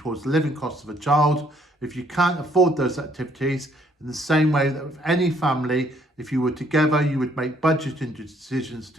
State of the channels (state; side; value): normal; both; correlation 0.65